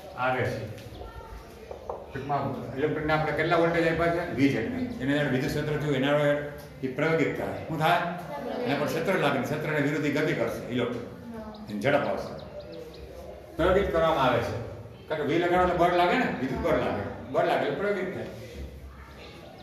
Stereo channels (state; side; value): identical; both; correlation 1.00